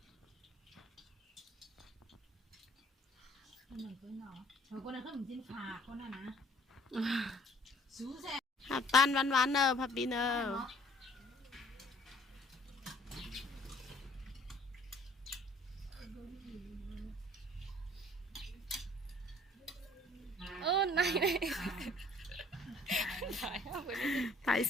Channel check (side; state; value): both; normal; correlation 0.57